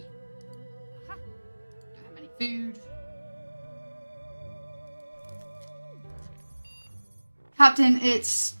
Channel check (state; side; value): inverted; both; correlation -1.00